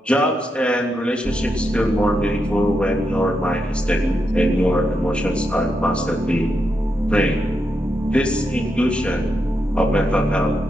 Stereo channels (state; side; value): normal; both; correlation 0.84